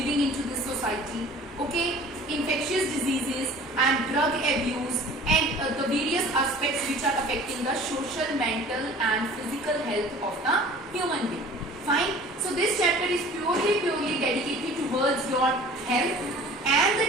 into this society, okay, infectious diseases and drug abuse and the various aspects which are affecting the social, mental and physical health of the human being. Fine. So this chapter is purely dedicated towards your health and the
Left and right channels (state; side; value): normal; both; correlation 0.46